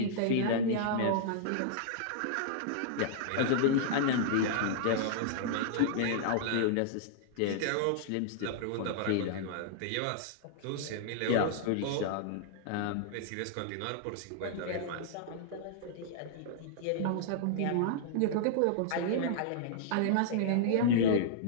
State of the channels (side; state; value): both; different; correlation -0.01